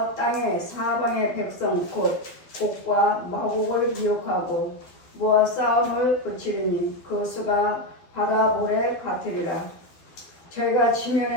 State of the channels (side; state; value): right; late; 12 ms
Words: 땅의 사방의 백성 곧 곡과 마곡을 미혹하고 모아 싸움을 붙이리니 그 수가 바다 모래 같으리라. 저희가